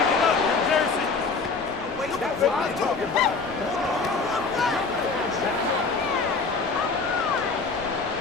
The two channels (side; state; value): right; quieter; 4.4 dB